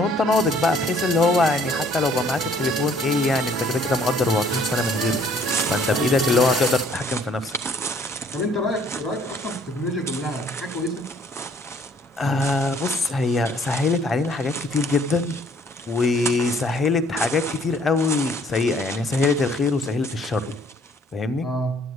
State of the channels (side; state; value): both; normal; correlation 0.60